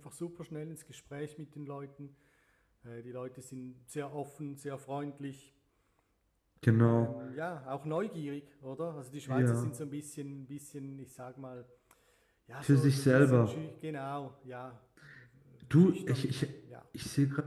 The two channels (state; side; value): identical; both; correlation 1.00